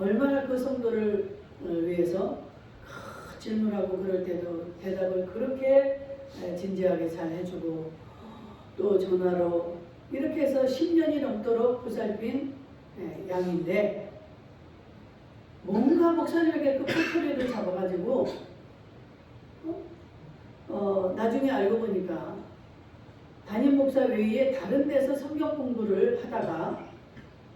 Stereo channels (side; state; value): both; identical; correlation 1.00